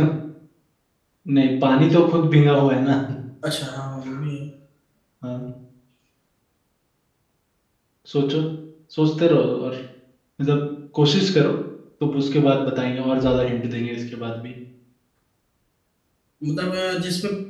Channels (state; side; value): identical; both; correlation 1.00